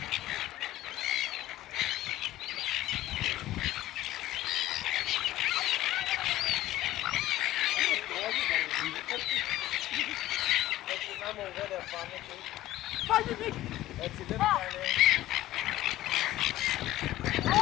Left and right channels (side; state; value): right; quieter; 15.1 dB